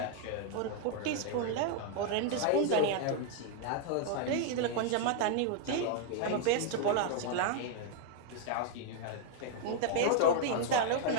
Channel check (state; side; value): different; both; correlation 0.00